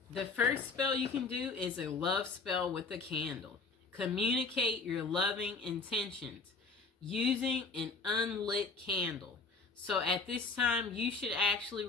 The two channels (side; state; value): right; quieter; 4.2 dB